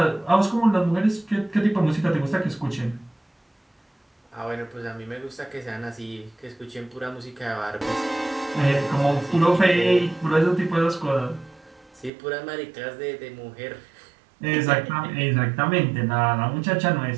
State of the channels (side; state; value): left; drops out; at 12.1 s